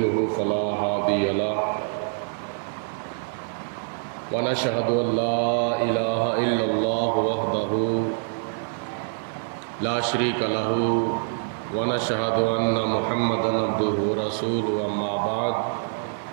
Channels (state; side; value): silent; left; digital silence